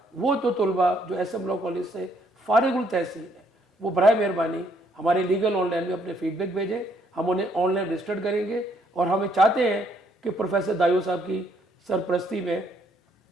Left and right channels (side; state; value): both; normal; correlation 0.69